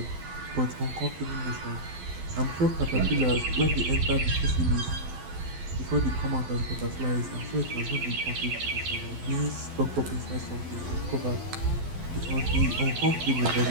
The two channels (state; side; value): late; left; 12 ms